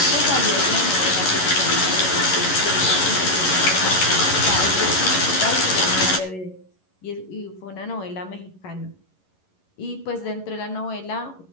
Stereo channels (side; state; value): right; late; 11 ms